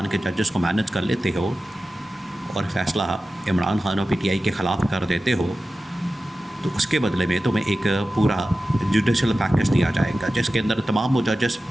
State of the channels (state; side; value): normal; both; correlation 0.94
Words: के जजेस को मैनेज कर लेते हो और फ़ैसला इमरान खान और पीटीआई के ख़िलाफ़ कर देते हो तो उसके बदले में तुम्हें एक पूरा जुडिशल पैकेज दिया जाएगा जिसके अंदर तमाम वो जजेस